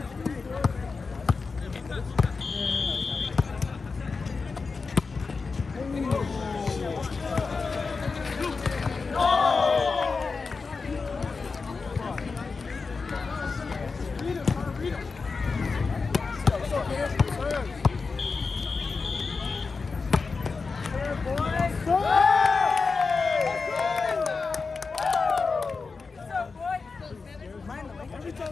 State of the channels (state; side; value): quieter; right; 4.5 dB